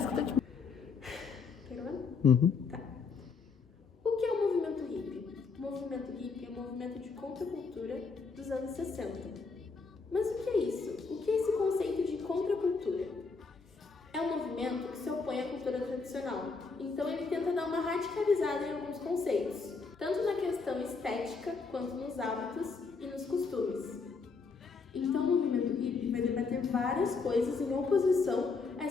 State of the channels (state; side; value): quieter; right; 4.7 dB